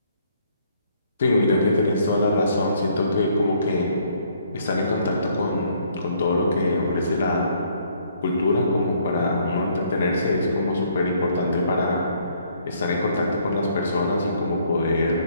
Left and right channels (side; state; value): both; inverted; correlation -0.65